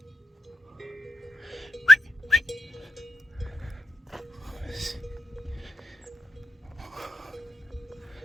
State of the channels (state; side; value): normal; both; correlation 0.85